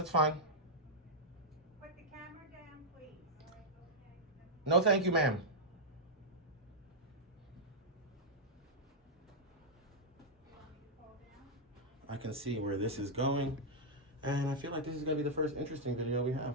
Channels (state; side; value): normal; both; correlation -0.05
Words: fine. Put the camera down, please. All right, okay. No, thank you, ma'am. You want me to fall down? I can see where this is going, and I feel like this is gonna be the first interesting video we